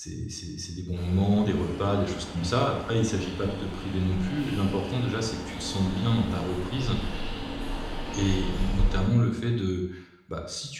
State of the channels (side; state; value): both; identical; correlation 1.00